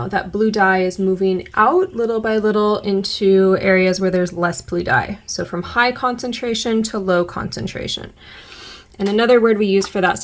That blue dye is moving out little by little into areas where there's less blue dye. So from high concentration to low concentration. And another word we use for that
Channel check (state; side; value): identical; both; correlation 1.00